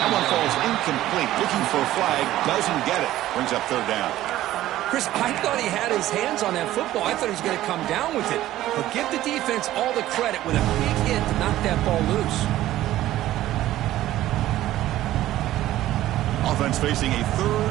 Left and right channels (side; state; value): left; quieter; 14.4 dB